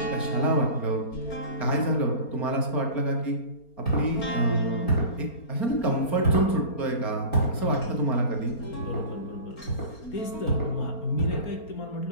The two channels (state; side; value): late; right; 4.3 ms